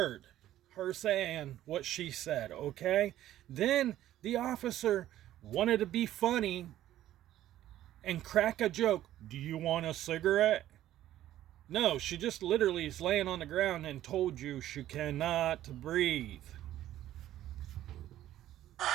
her saying what she said, okay? Then the officer wanted to be funny and crack a joke. Do you want a cigarette? No, she just literally is laying on the ground and told you she cannot breathe.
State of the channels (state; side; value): quieter; left; 13.1 dB